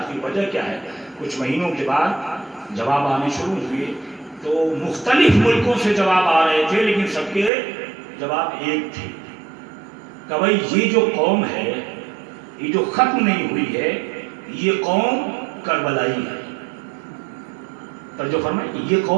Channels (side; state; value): left; drops out; at 7.5 s